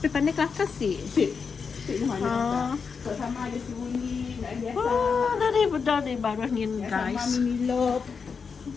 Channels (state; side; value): quieter; right; 5.6 dB